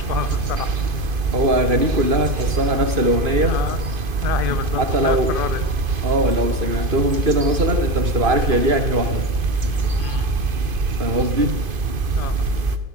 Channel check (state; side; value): late; left; 2.5 ms